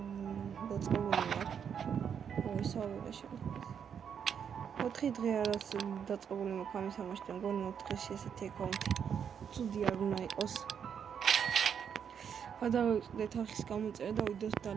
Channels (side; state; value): left; quieter; 7.7 dB